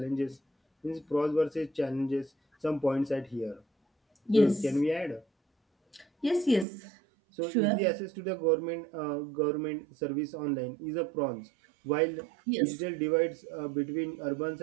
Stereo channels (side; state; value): left; drops out; at 6.7 s